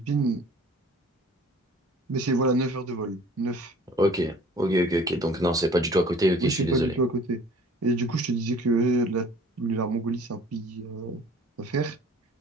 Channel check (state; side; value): normal; both; correlation 0.50